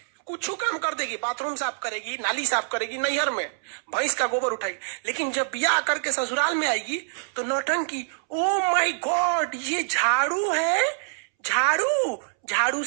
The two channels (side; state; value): left; silent; 61 dB below the other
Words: कुछ काम कर देगी, बाथरूम साफ करेगी, नाली साफ करेगी, नैहर में भैंस का गोबर उठाएगी, लेकिन जब ब्याह करके ससुराल में आएगी तो नौटंकी। ओ माय गॉड, ये झाड़ू है, झाड़ू